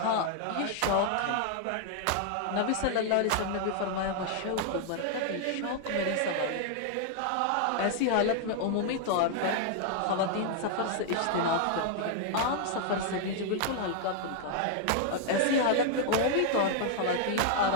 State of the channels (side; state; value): both; different; correlation 0.00